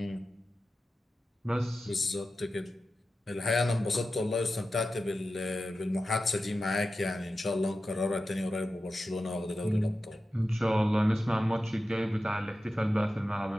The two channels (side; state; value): both; normal; correlation 0.92